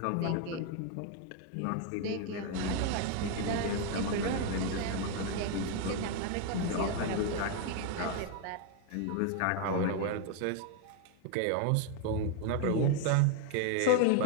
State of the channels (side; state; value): both; different; correlation 0.01